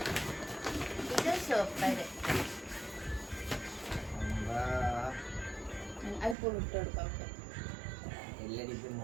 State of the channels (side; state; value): left; drops out; at 6.4 s